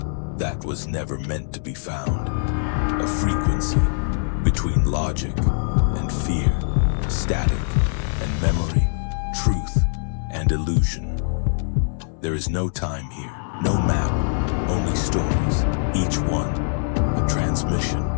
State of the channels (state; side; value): silent; right; 64 dB below the other